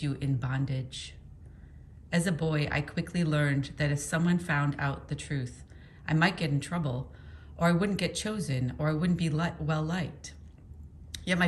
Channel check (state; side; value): identical; both; correlation 1.00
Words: you in bondage? As a boy, I quickly learned that if someone found out the truth, I might get in trouble, or I wouldn't get chosen, or I wouldn't be well liked. Yet my